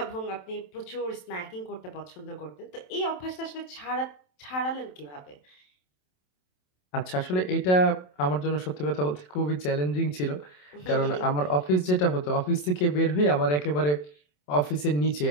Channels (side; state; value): right; late; 27 ms